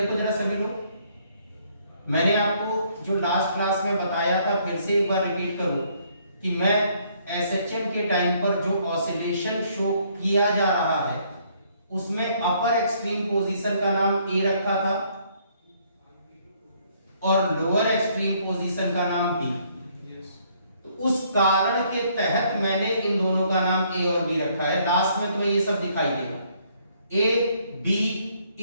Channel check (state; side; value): inverted; both; correlation -0.66